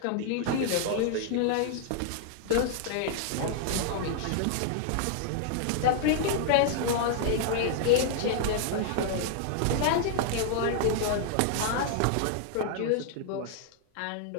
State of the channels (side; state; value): both; different; correlation -0.01